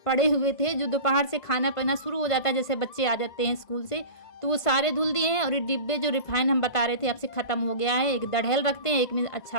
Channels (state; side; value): late; right; 1.5 ms